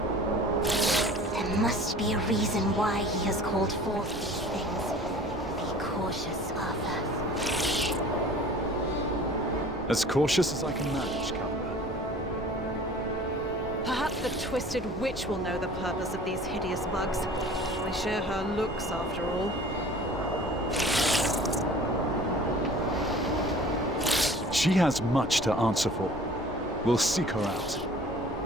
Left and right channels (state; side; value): normal; both; correlation 0.46